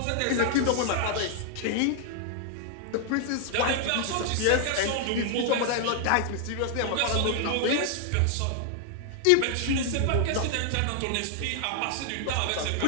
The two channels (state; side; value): different; both; correlation 0.00